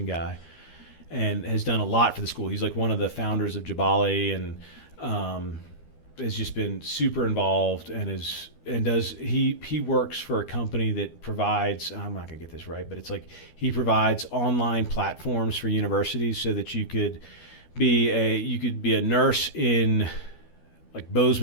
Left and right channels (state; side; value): late; right; 12 ms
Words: guy, and has done a lot for the school. He's like one of the founders of Jabali, and has just been super involved, and he works for a company that provides, I'm not gonna get this right, but it's like he provides online platforms for universities so that you could be a nurse in like